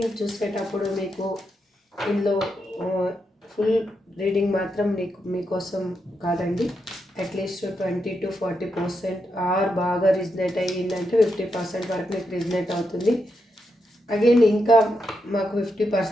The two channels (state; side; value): normal; both; correlation 0.84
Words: చూసేటప్పుడు మీకు ఇందులో ఫుల్ రీడింగ్ మాత్రం మీకోసం కాదండి. అట్లీస్ట్ 20-40% ఆర్ బాగా రిజనేట్ అయ్యిందంటే 50% వరకు మీకు రిజనేట్ అవుతుంది. అగైన్ ఇంకా మాకు